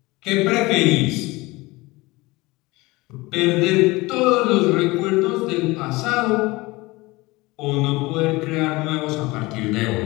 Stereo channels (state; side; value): quieter; right; 22.0 dB